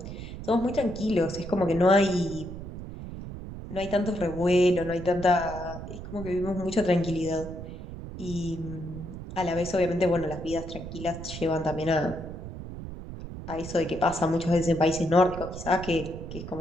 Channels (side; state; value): right; noise; rumble, 10 dB below the sound